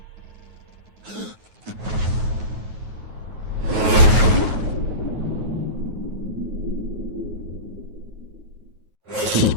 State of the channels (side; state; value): left; late; 9.4 ms